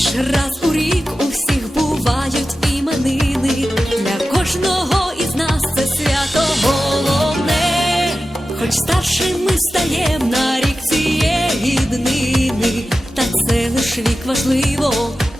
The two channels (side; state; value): both; normal; correlation 0.94